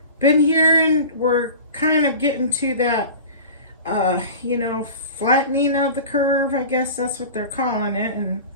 been hearing we're kind of getting to that flattening of the curve, I guess that's what they're calling it, and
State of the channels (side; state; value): both; inverted; correlation -0.36